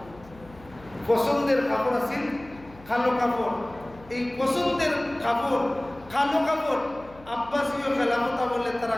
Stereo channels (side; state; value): left; noise; hum, 22 dB below the sound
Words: পছন্দের কাপড় আছিল কালো কাপড়। এই পছন্দের কাপড় কালো কাপড় আব্বাসীয় খেলাফত বলে তারা